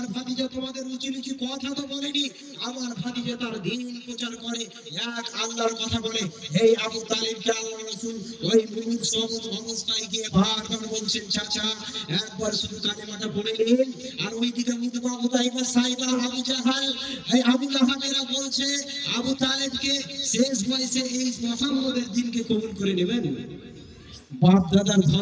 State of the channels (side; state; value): both; identical; correlation 1.00